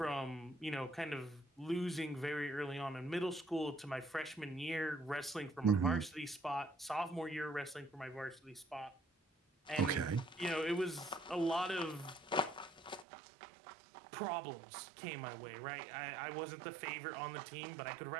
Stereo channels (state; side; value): drops out; left; at 13.1 s